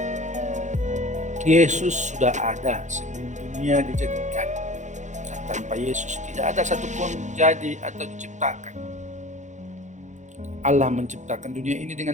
Yesus sudah ada sebelum dunia dijadikan. Dan tanpa Yesus tidak ada satupun jadi atau diciptakan. Allah menciptakan dunia ini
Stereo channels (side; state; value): left; late; 0.35 ms